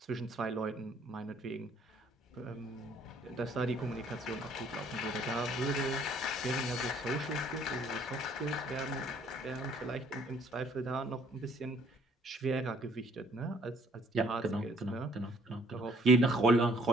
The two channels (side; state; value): both; normal; correlation 0.61